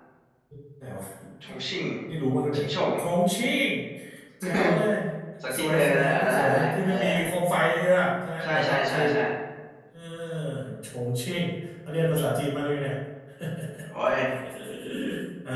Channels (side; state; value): both; identical; correlation 1.00